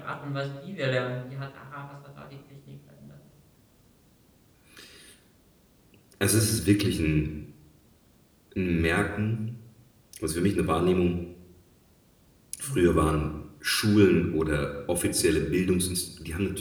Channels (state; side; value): identical; both; correlation 1.00